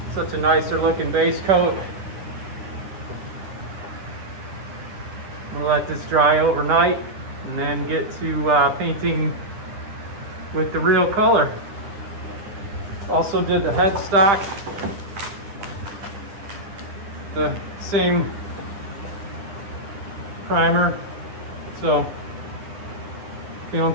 Such a nicer looking base coat. I'm gonna let this dry overnight and then get to painting with the real color. Also did the headstock, the same primer, so feeling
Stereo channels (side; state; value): left; late; 10 ms